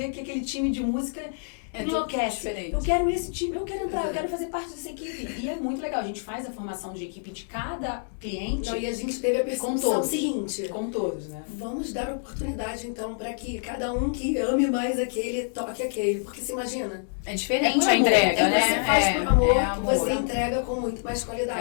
que aquele time de música enlouquece. Eu quero esse time, eu quero entrar, eu quero fazer parte dessa equipe. E é muito legal, a gente faz a formação de equipe de cada cliente. E a gente teve a percepção seguinte. Com todos, né? Vamos dar oportunidade, então, para que cada um que ame mais aquele, toque aquele. Porque se imagina. É diferente a entrega, né? Você faz por amor, você entrega com muito mais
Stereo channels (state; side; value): silent; right; digital silence